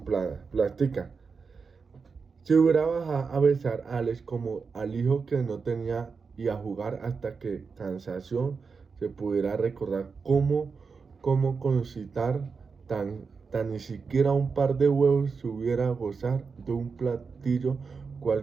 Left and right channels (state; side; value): quieter; left; 5.1 dB